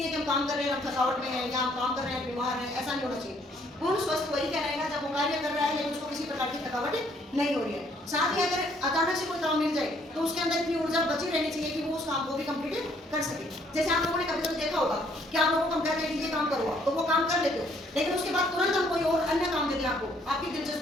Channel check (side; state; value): both; normal; correlation 0.65